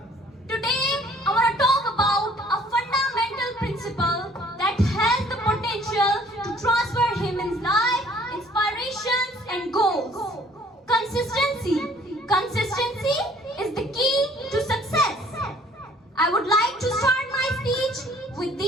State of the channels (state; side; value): normal; both; correlation 0.57